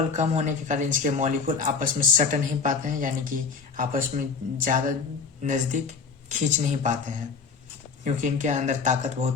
कम होने के कारण इसके मॉलिक्यूल आपस में सट नहीं पाते हैं, यानी कि आपस में ज़्यादा नज़दीक खींच नहीं पाते हैं, क्योंकि इनके अंदर ताकत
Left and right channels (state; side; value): quieter; right; 5.2 dB